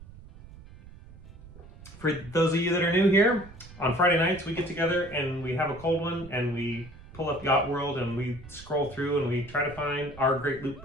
For those of you that are new here, on Friday nights we get together and we have a cold one and we pull up YachtWorld and we scroll through and we try to find our great loop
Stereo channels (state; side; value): noise; right; rumble, 19 dB below the sound